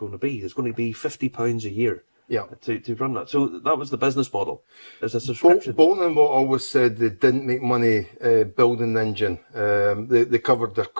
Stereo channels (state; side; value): inverted; both; correlation -1.00